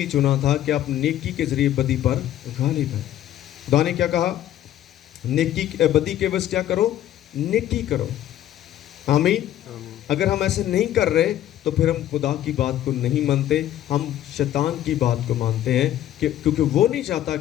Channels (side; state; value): right; quieter; 12.2 dB